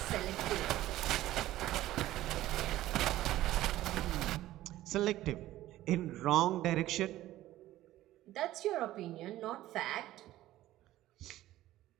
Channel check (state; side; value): quieter; left; 15.0 dB